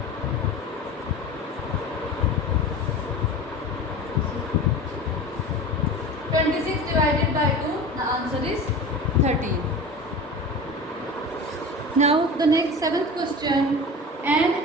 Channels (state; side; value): normal; both; correlation 0.33